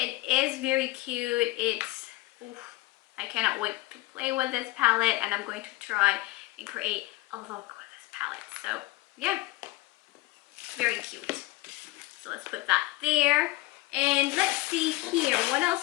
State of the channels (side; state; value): right; quieter; 19.4 dB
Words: is very cute. It's, oof, I cannot wait to play with this palette, and I'm going to try and create a look with this palette. So, yeah. Very cute. So let's put that there. And let's see here. What